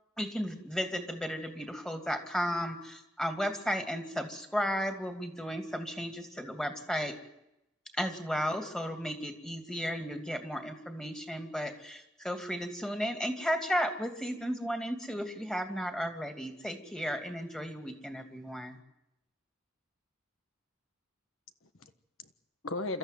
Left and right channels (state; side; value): normal; both; correlation 0.83